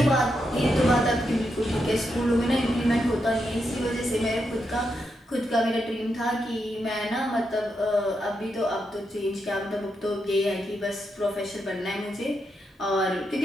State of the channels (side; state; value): both; normal; correlation 0.83